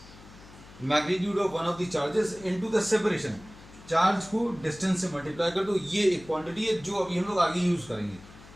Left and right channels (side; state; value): left; noise; hum, 20 dB below the sound